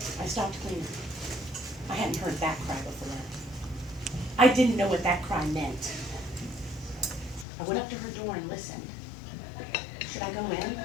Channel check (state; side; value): drops out; right; at 7.5 s